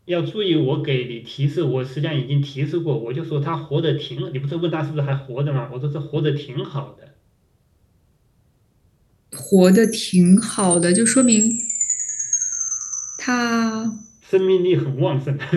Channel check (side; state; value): both; identical; correlation 1.00